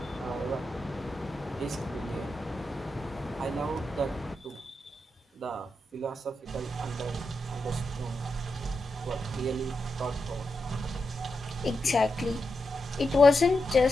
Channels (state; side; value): normal; both; correlation 0.87